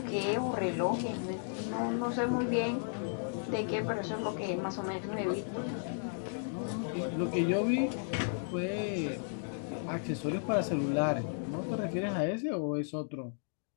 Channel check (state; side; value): silent; right; digital silence